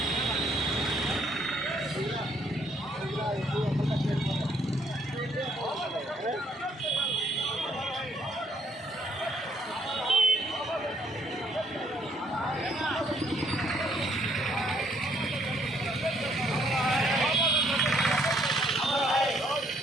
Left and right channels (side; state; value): both; normal; correlation 0.68